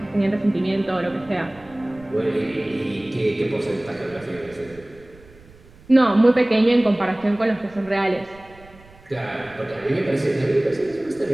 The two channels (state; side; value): noise; right; rumble, 24 dB below the sound